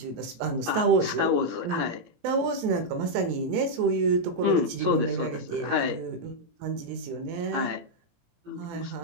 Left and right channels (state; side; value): late; left; 18 ms